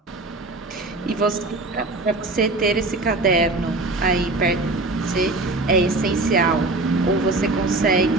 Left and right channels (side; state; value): left; quieter; 3.0 dB